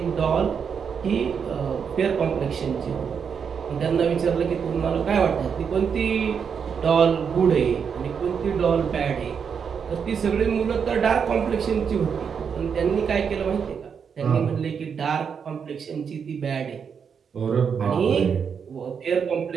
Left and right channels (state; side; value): quieter; left; 6.7 dB